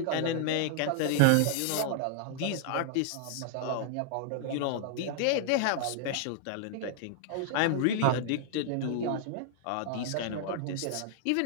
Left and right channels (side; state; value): both; different; correlation -0.01